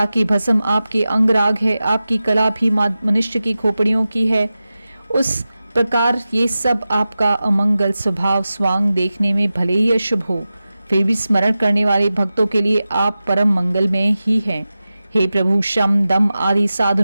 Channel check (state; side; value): inverted; both; correlation -0.94